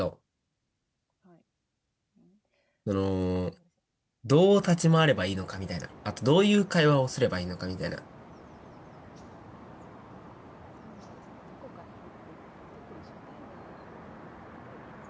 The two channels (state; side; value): identical; both; correlation 1.00